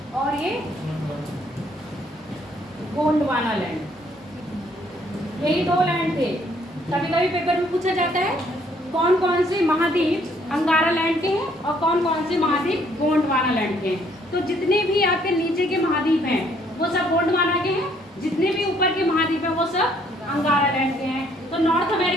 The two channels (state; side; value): normal; both; correlation 0.65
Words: और ये गोंडवाना लैंड, यही दो लैंड थे। कभी कभी पेपर में पूछा जाता है कौन कौन से महाद्वीप अंगारा लैंड के हैं और कौन कौन से महाद्वीप गोंडवाना लैंड के हैं। तो जितने भी आपके नीचे के महाद्वीप हैं वो सब गोंडवाना के हैं, जितने भी ऊपर के महाद्वीप हैं वो सब अंगारा लैंड के हैं। तो नॉर्थ